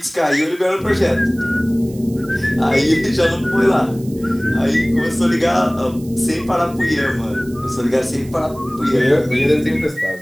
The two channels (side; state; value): right; noise; hiss, 23 dB below the sound